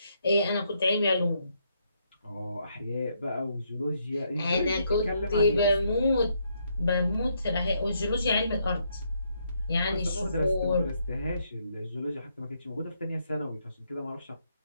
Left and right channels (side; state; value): both; inverted; correlation -0.75